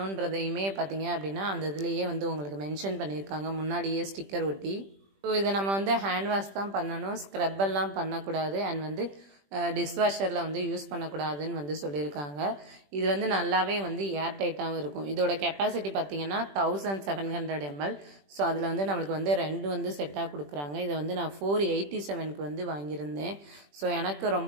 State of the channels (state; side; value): late; left; 20 ms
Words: பார்த்தீங்க அப்படின்னா அந்த இதுலேயே வந்து உங்களுக்கு மென்ஷன் பண்ணியிருக்காங்க, முன்னாடியே ஸ்டிக்கர் ஒட்டி. ஸோ இதை நம்ம வந்து ஹேண்ட் வாஷ் தான் பண்ணணும், ஸ்க்ரப்பெல்லாம் பண்ணக்கூடாது. அண்ட் வந்து டிஷ்வாஷரில் வந்து யூஸ் பண்ணக்கூடாதுன்னு வந்து சொல்லியிருக்காங்க. இது வந்து நல்லாவே வந்து ஏர் டைட்டாகவும் இருக்கும். இதோட கெப்பாசிட்டி பார்த்தீங்கன்னா 1700 ml. ஸோ அதில் வந்து நம்மளுக்கு வந்து 2 வந்து செட்டாக கொடுக்குறாங்க. இதை வந்து நான் 487க்கு வந்து வாங்கியிருந்தேன். ஸோ எனக்கு